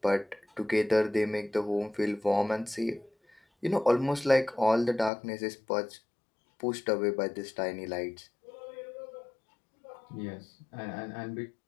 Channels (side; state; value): right; drops out; at 5.1 s